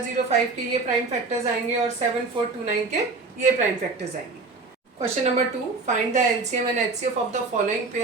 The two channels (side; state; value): left; quieter; 4.0 dB